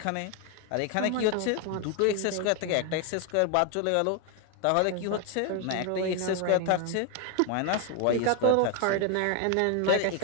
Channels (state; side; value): different; both; correlation 0.01